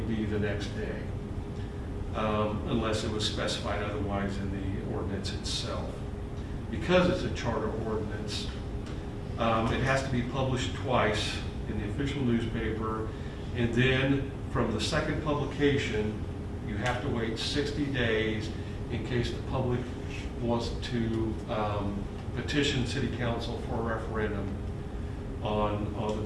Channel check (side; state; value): both; identical; correlation 1.00